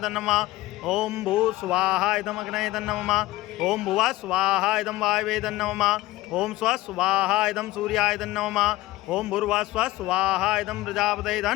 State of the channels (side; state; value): right; quieter; 17.9 dB